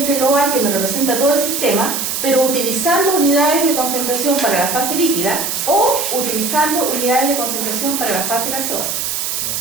global que me representa todo el sistema, pero utilizando unidades de concentración para la fase líquida o utilizando unidades de concentración para la fase gaseosa.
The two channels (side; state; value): right; noise; hiss, 2 dB below the sound